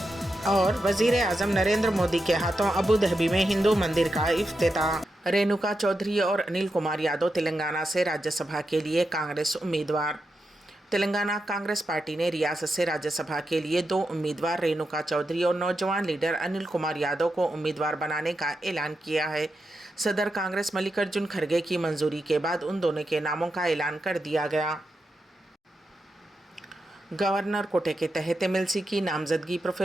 और वजीर आजम नरेंद्र मोदी के हाथों अबू धाबी में हिंदू मंदिर का इफ्तिताह। रेणुका चौधरी और अनिल कुमार यादव तेलंगाना से राज्यसभा के लिए कांग्रेस उम्मीदवार। तेलंगाना कांग्रेस पार्टी ने रियासत से राज्यसभा के लिए 2 उम्मीदवार रेणुका चौधरी और नौजवान लीडर अनिल कुमार यादव को उम्मीदवार बनाने का ऐलान किया है। सदर कांग्रेस मल्लिकार्जुन खड़गे की मंजूरी के बाद उन दोनों के नामों का ऐलान कर दिया गया। गवर्नर कोटे के तहत एमएलसी की नामजदगी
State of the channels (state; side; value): normal; both; correlation 0.87